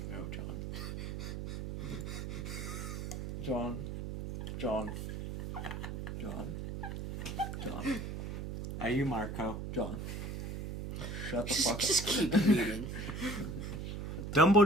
No, John. John. Are you Marco? John. Shut the fuck up. Just keep reading.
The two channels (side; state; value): right; noise; hum, 5 dB below the sound